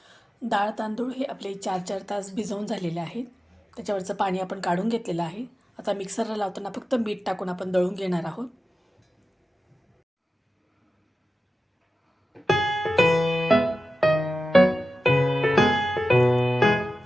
डाळ तांदूळ हे आपले 4-4 तास भिजवून झालेले आहेत. त्याच्यावरचं पाणी आपण काढून घेतलेलं आहे. आता मिक्सरला लावताना फक्त मीठ टाकून आपण दळून घेणार आहोत.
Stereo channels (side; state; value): both; normal; correlation 0.94